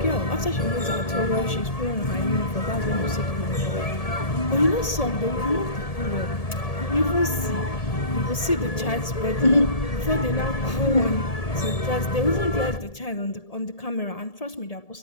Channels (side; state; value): right; late; 1.7 ms